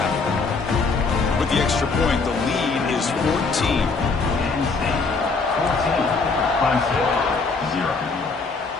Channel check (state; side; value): quieter; right; 4.2 dB